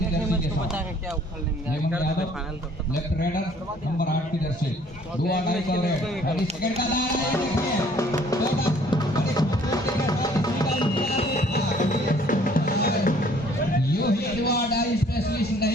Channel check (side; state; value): both; normal; correlation 0.58